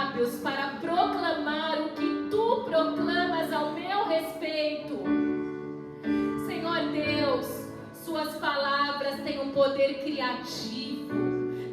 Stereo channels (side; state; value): both; identical; correlation 1.00